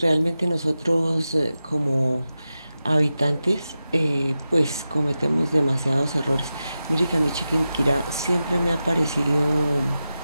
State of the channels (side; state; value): both; inverted; correlation -0.92